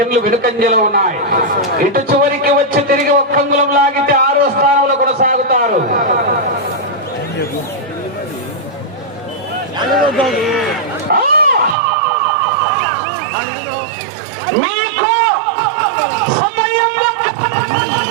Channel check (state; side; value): drops out; left; at 11.8 s